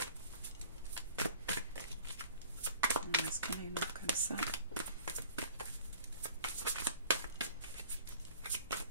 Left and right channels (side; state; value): both; inverted; correlation -0.47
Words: Est-ce qu'on a une autre comme ça?